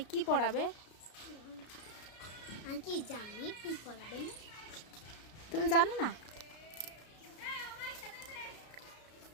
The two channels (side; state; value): right; late; 33 ms